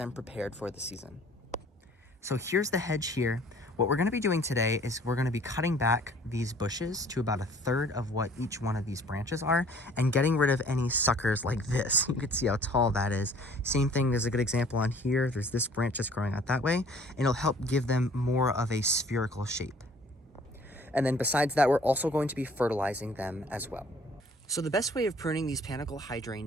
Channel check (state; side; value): normal; both; correlation 0.54